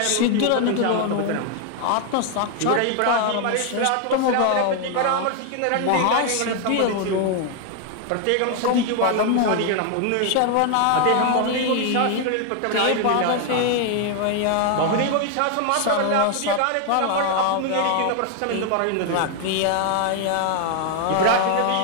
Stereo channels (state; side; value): different; both; correlation 0.00